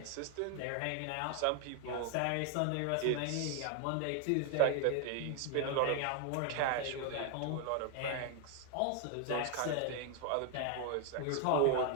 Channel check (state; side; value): different; both; correlation 0.00